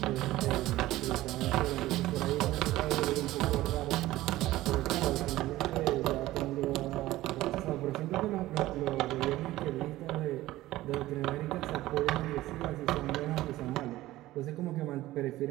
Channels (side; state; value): left; quieter; 16.4 dB